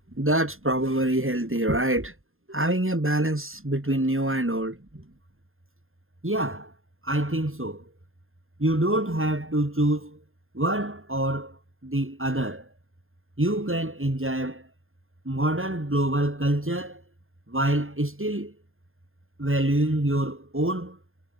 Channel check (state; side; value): late; left; 0.60 ms